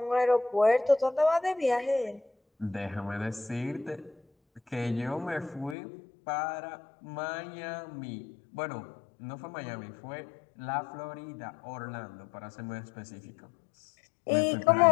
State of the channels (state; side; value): drops out; right; at 5.8 s